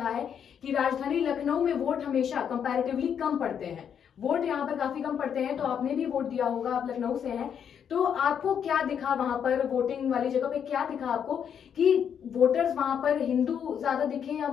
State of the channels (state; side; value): quieter; right; 8.1 dB